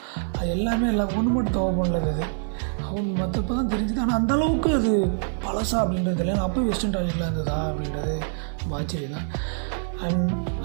அது எல்லாமே ஒன்று மட்டும் தவ பண்ணல அது அவங்க மற்றப்போ தான் தெரிஞ்சுது. ஆனால் அந்தளவுக்கு அது பழசா அப்படின்றது இல்லை. அப்போ வெஸ்டர்ன் டாய்லெட்டில் இருந்ததா அப்படின்றது ஆச்சரியம் தான். அண்ட்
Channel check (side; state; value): left; silent; digital silence